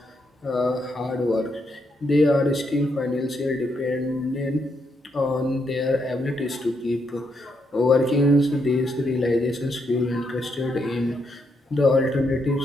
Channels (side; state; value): both; normal; correlation 0.78